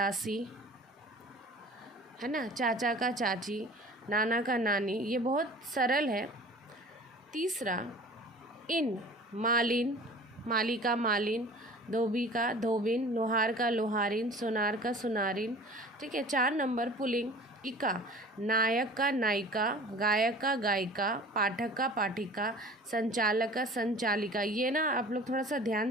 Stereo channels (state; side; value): normal; both; correlation 0.43